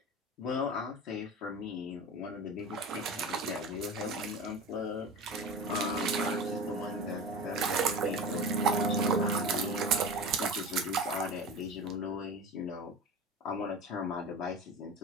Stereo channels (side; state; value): both; normal; correlation 0.32